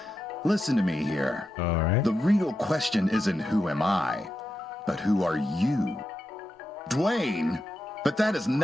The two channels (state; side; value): normal; both; correlation 0.87